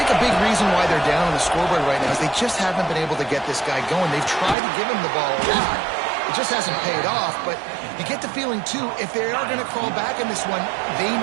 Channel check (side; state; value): left; drops out; at 4.5 s